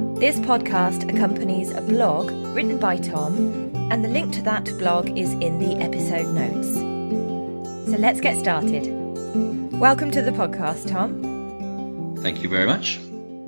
This podcast accompanies a blog written by Tom, and the link to that blog is in the episode notes. So let's get started. Welcome to the podcast, Tom. Thank you very much.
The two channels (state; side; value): inverted; both; correlation -1.00